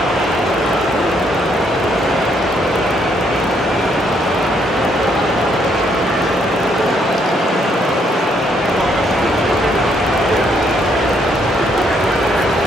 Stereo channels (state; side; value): normal; both; correlation 0.71